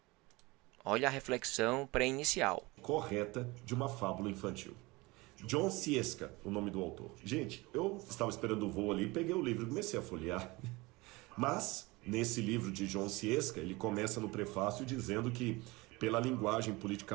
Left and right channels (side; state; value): left; quieter; 23.1 dB